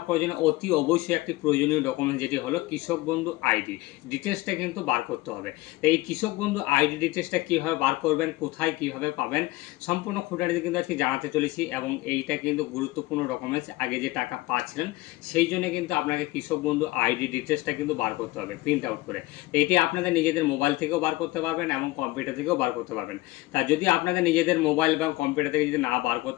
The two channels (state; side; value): quieter; right; 19.6 dB